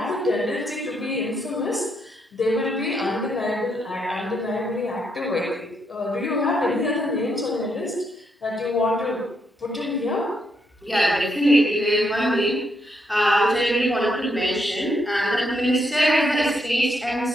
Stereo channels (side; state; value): both; normal; correlation 0.77